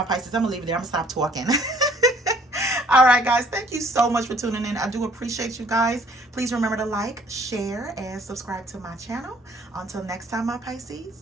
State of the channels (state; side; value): normal; both; correlation 0.59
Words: Pisces, I'm gonna leave it there. I'm gonna stop talking. All right, guys, thank you so much for tuning in. I do appreciate you guys. Please remember to like, share, and subscribe to my channel. Until next time, my